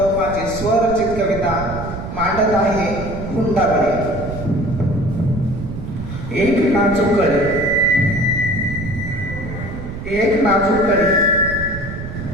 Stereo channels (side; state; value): right; noise; rumble, 8 dB below the sound